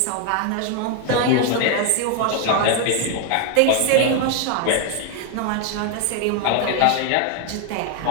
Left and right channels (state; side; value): different; both; correlation 0.01